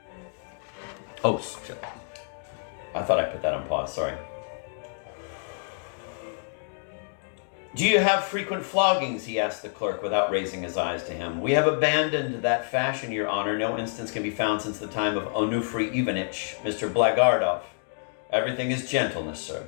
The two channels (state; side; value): silent; right; digital silence